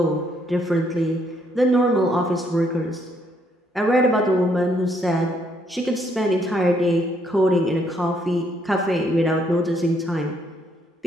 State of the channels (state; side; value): normal; both; correlation 0.70